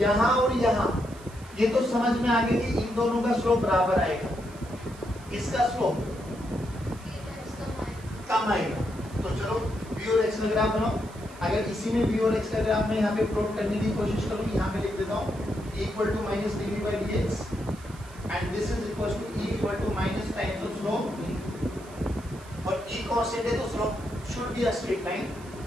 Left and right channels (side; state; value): right; noise; hiss, 22 dB below the sound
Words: यहाँ और यहाँ ये तो समझ में आ गया कि इन दोनों का स्लोप बराबर आएगा, इसका स्लोप कम आएगा। तो चलो v और x का ग्राफ बनाओ। अगर इसी में v और x का ग्राफ मैं यहाँ पे प्लॉट करने की कोशिश करूँ, यहाँ पे लिख देता हूँ equal to minus dV/dx and this is equal to E equal to minus times of slope, और E कांस्टेंट है तो slope should be a straight line.